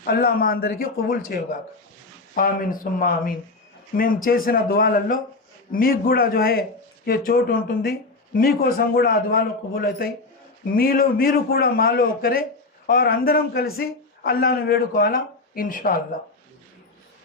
అల్లా మా అందరికీ కబూల్ చేయగాక. ఆమీన్ సుమ్మా ఆమీన్. మేము చేసిన దువాలలో మీకు కూడా ఏ చోటు ఉంటుంది, మీకోసం కూడా ఆ దువాలు కబూల్ అవుతాయి. మీరు కూడా మాలో ఒకరే, అందరం కలిసి అల్లాను వేడుకోవాలా ఇన్షాల్లా.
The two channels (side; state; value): right; quieter; 3.4 dB